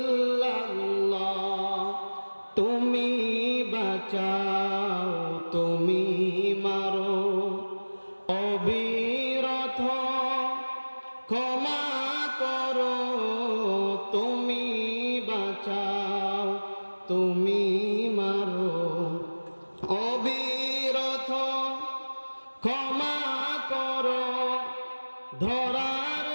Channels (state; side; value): inverted; both; correlation -1.00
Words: তুমি বাঁচাও, তুমি মারো, অবিরত ক্ষমা করো। তুমি বাঁচাও, তুমি মারো, অবিরত ক্ষমা করো। ধরার